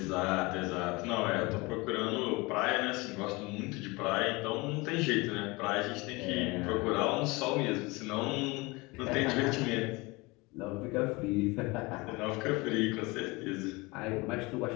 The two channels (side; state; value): right; quieter; 24.4 dB